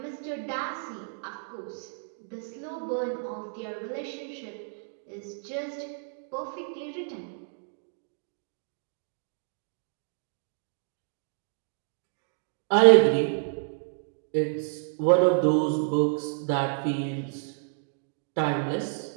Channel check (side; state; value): left; silent; digital silence